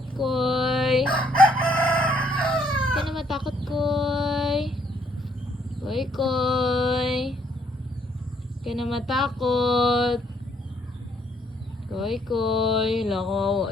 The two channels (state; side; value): normal; both; correlation 0.68